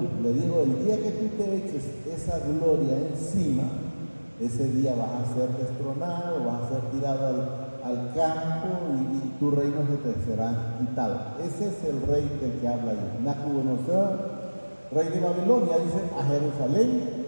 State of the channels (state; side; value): inverted; both; correlation -1.00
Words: Le dijo, el día que tú te eches esa gloria encima, ese día vas a ser destronado, vas a ser tirado al campo y tu reino se te será quitado. Ese es el rey del que habla ahí. Nabucodonosor, rey de Babilonia, dice, a Jerusalén